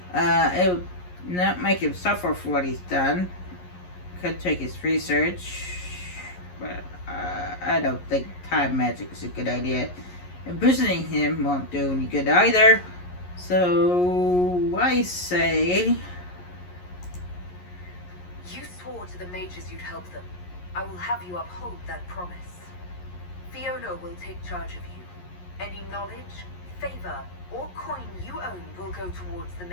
would not make him suffer for what he's done. Could take his research, but I don't think time magic is a good idea. Imprisoning him won't do any good either. So I say, You swore to the mages you'd help them. I will have you uphold that promise. Fiona will take charge of you. Any knowledge, favor, or coin you own will go towards the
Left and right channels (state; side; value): late; right; 11 ms